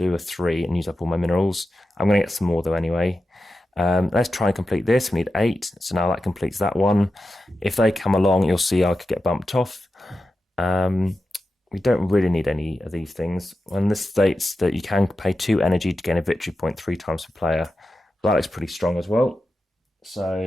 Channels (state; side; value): normal; both; correlation 0.91